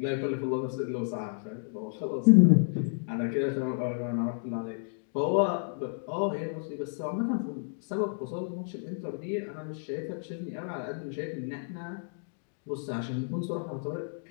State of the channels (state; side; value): silent; right; digital silence